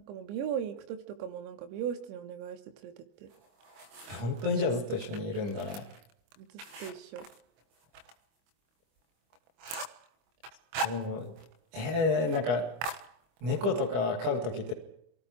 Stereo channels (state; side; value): late; left; 25 ms